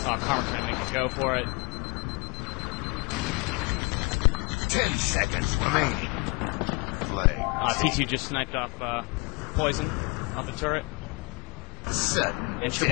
Karma's gonna make it go for it. 10 seconds remaining. Flag. T2 just sniped off Poison off the turret. Sudden. And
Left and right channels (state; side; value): quieter; right; 27.9 dB